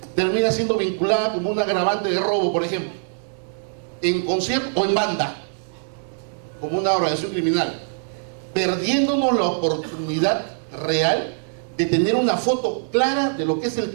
termina siendo vinculada como un agravante de robo, por ejemplo, en concierto o en banda, como una organización criminal, perdiéndonos la oportunidad real de tener una foto clara de lo que es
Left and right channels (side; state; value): left; silent; digital silence